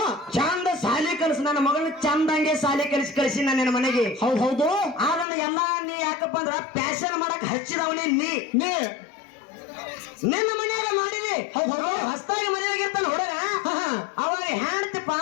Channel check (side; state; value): right; drops out; at 5.2 s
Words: ಚಂದ ಸಾಲಿ ಕಲಿಸಿ, ನನ್ನ ಮಗಳನ್ನ ಚಂದಂಗೆ ಸಾಲಿ ಕಲಿಸಿ ನನ್ನ ಮನೆಗೆ. ಹೌದು ಹೌದು. ಅದನ್ನ ಎಲ್ಲಾ ನೀ ಯಾಕಪ್ಪ ಅಂದ್ರ ಪ್ಯಾಶನ್ ಮಾಡಕ್ ಹಚ್ಚಿದವನೇ ನೀ ನಿನ್ನ ಮನ್ಯಾಗ ಮಾಡಿದಿ. ಹೊಸದಾಗಿ ಮನೆಯಾಗಿರ್ತಾನ ಹುಡುಗ, ಅವಾಗ ಹೆಣ್ತಿ